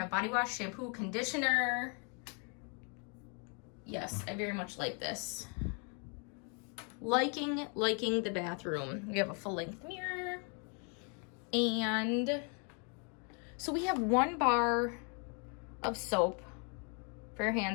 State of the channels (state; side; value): quieter; right; 37.8 dB